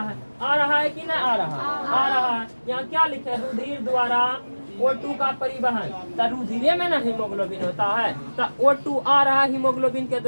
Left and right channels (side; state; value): both; inverted; correlation -1.00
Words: है कि नहीं आ रहा है। यहाँ क्या लिखे? रुधिर द्वारा O2 का परिवहन। तो रुधिर में ना हीमोग्लोबिन होता है, तो O2 आ रहा है हीमोग्लोबिन के